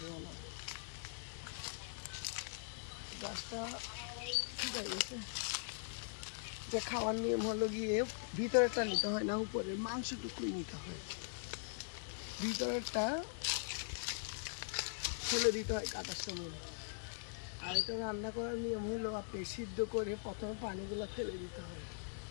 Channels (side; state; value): right; silent; digital silence